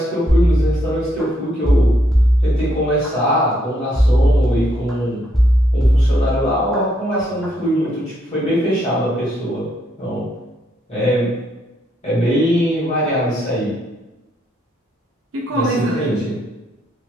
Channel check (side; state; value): both; normal; correlation 0.74